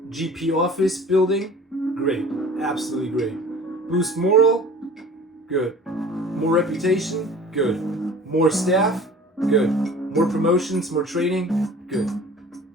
GP office building. Great. Absolutely great. Boost moral. Good. More reputation. Good. More staff. Good. More promotions. More training. Good.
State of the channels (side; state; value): both; normal; correlation 0.44